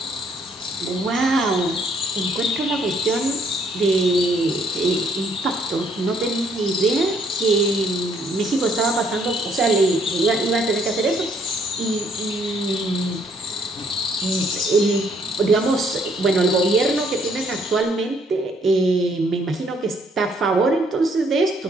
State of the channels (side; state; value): both; normal; correlation 0.66